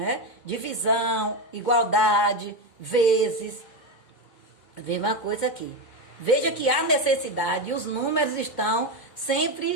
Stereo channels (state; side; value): late; right; 2.2 ms